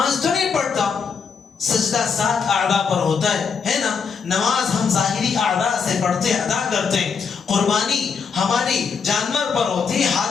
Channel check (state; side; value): quieter; right; 5.9 dB